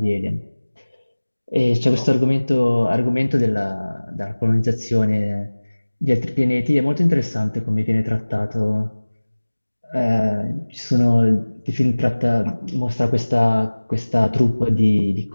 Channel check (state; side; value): inverted; both; correlation -1.00